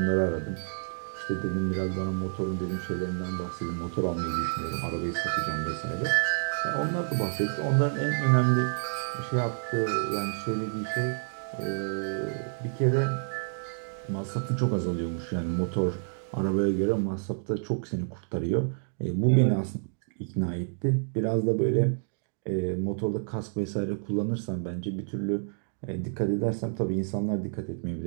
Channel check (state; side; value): silent; left; digital silence